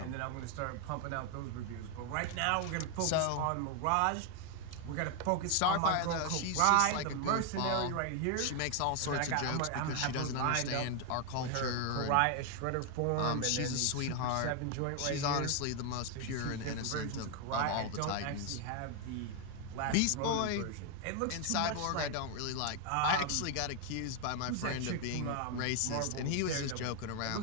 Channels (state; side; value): different; both; correlation 0.01